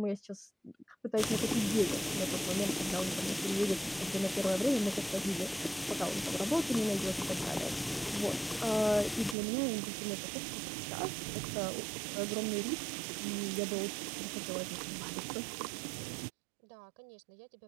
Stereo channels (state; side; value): drops out; left; at 9.3 s